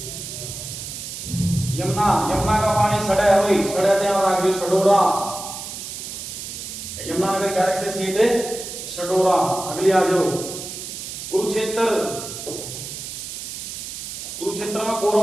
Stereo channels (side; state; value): right; noise; hiss, 8 dB below the sound